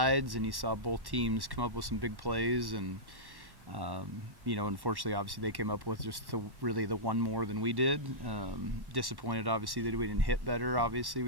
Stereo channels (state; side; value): late; left; 1.1 ms